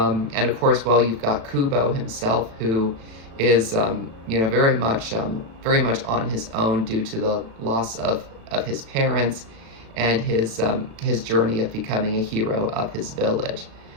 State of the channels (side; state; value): left; late; 36 ms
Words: of course, well, you've got Kubo himself, who is, very much on his own due to the loss of his parents and his journey of becoming a hero of his village.